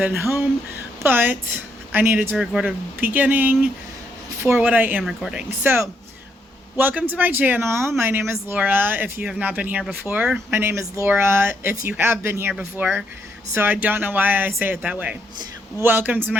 home, but I needed to record a beginning for what I am recording. So, welcome to my channel. My name is Laura. If you have not been here before, my name is Laura. If you have been here before, so I don't know why I say it that way. Welcome to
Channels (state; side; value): normal; both; correlation 0.76